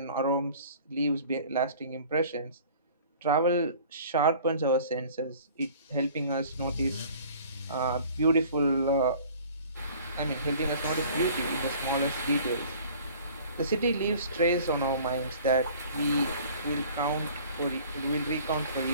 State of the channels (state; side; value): inverted; both; correlation -0.49